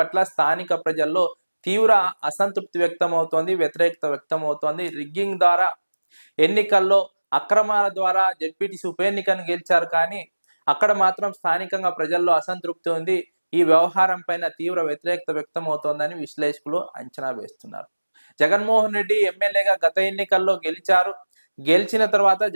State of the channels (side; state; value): both; inverted; correlation -1.00